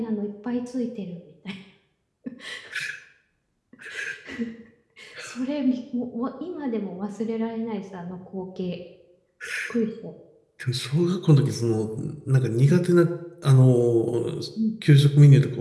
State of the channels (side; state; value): both; identical; correlation 1.00